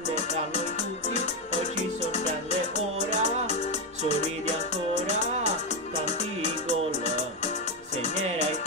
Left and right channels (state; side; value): normal; both; correlation 0.07